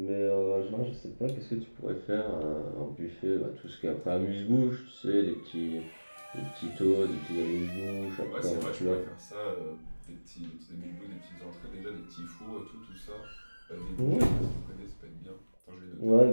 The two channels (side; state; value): both; inverted; correlation -1.00